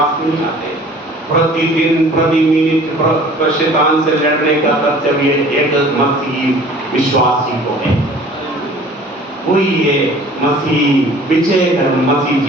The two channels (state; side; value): normal; both; correlation 0.48